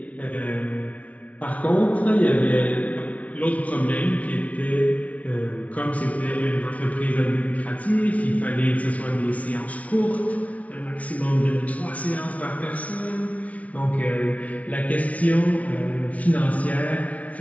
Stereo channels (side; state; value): right; late; 0.067 ms